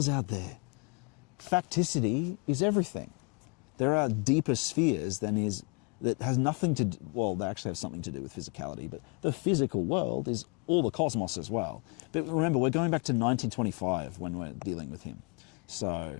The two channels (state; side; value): quieter; right; 32.9 dB